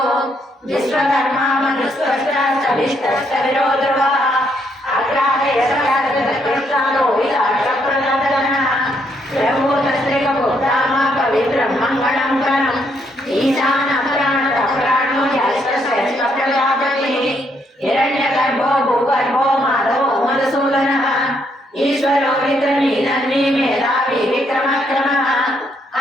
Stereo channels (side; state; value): both; normal; correlation 0.73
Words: विश्वकर्मा मनुस्पष्टा सविष्टस्तविरो ध्रुवः अग्राहयसकाशकृष्णालो विलासप्रनन्दनः प्रभूतस्त्रिकभूतामा पवित्रं मङ्गलं कणम् ईशानप्राणो ह्यष्टश्रेष्ठप्रजापतिः हिरण्यगर्भो भूगर्भो माधवो मधुसूदनः ईश्वरो विक्रमीनन्वी मेधावी विक्रमक्रमः